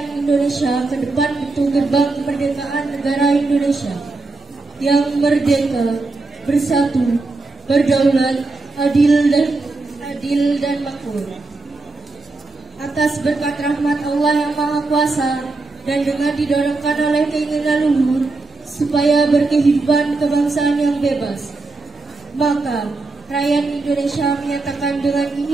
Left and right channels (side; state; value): left; quieter; 3.4 dB